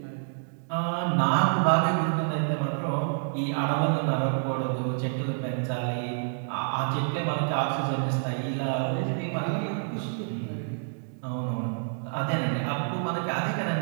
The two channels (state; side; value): silent; left; digital silence